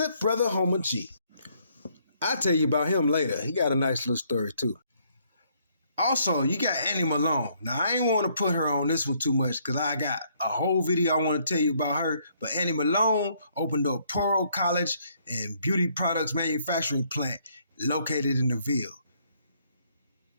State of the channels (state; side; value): inverted; both; correlation -0.68